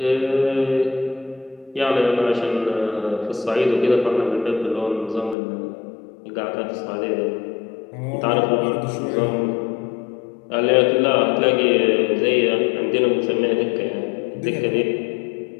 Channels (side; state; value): right; drops out; at 5.4 s